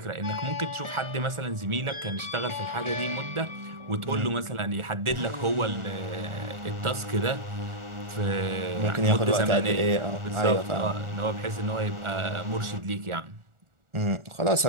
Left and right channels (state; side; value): late; left; 1.4 ms